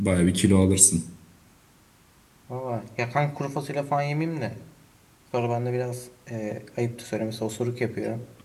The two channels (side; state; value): both; identical; correlation 1.00